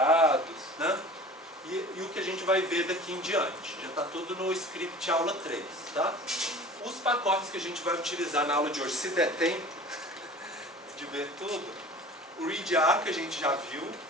né? E o que a gente vai ver daqui em diante. Já está tudo no script aula 3, tá? Os pacotes que a gente vai utilizar na aula de hoje, se der tempo de ver tudo, o readr que a gente já viu,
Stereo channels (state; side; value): normal; both; correlation 0.41